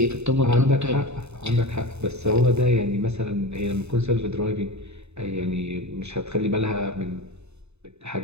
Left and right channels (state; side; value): late; left; 0.81 ms